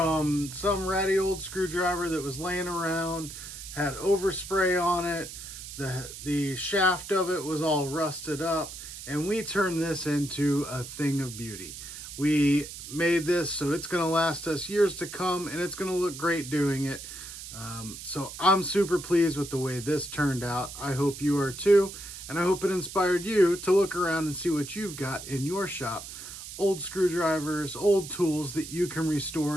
some ratty old screwdriver that was laying around, had overspray on it, the shaft of it was all rusted up, and we turned this into a thing of beauty. We made this so it's going to last us years to come, and it's going to look great doing it. So I'm super pleased with the way this turned out. I hope you are too, and I hope it inspired you to look around and see what you've got in your shop. Old screwdrivers, old tools that you can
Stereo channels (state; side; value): noise; right; hiss, 11 dB below the sound